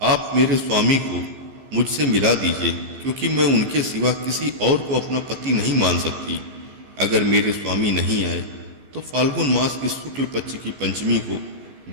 आप मेरे स्वामी को मुझसे मिला दीजिए, क्योंकि मैं उनके सिवा किसी और को अपना पति नहीं मान सकती। अगर मेरे स्वामी नहीं आए तो फाल्गुन मास की शुक्ल पक्ष की पंचमी को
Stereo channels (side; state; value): left; late; 15 ms